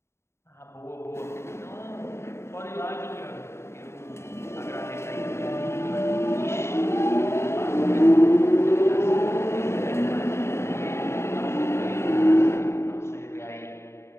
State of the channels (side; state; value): right; late; 0.13 ms